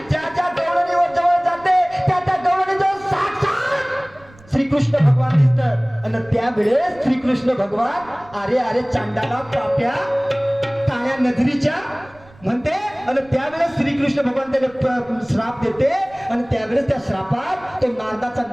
ज्या गवळणीवर जवळ जाते त्या गवळणीजवळ साक्षात श्रीकृष्ण भगवान दिसतात. आणि त्यावेळेस श्रीकृष्ण भगवान अरे चांडाला पाप्या काळ्या नजरीच्या म्हणते. आणि त्यावेळेस श्रीकृष्ण भगवान त्याला श्राप देते. आणि त्यावेळेस त्या श्रापात तो नारदाचा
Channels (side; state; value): right; noise; rumble, 26 dB below the sound